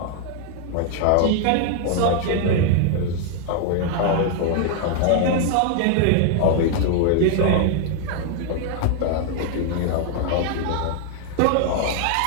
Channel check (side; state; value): both; different; correlation 0.00